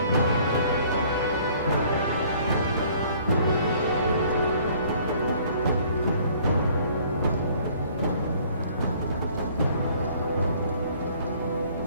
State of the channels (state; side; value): inverted; both; correlation -0.57